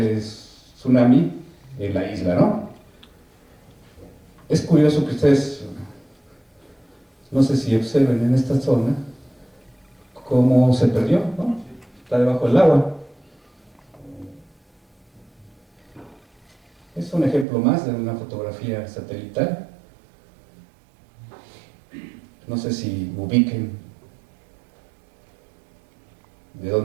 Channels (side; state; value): left; drops out; at 17.4 s